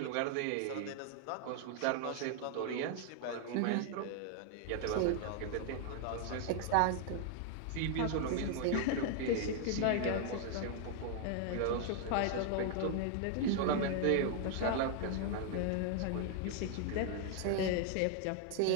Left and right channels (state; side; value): different; both; correlation 0.00